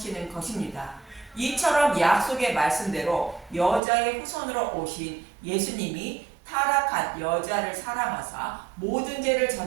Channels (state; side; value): drops out; left; at 3.8 s